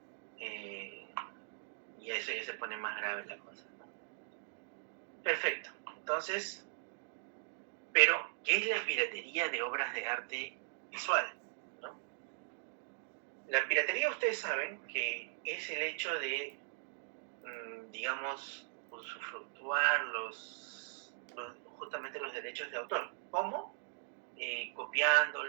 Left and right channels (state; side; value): silent; left; digital silence